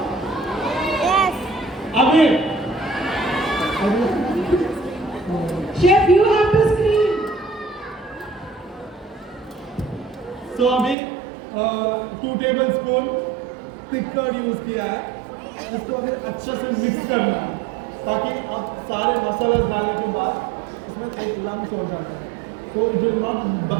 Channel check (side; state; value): left; drops out; at 11.0 s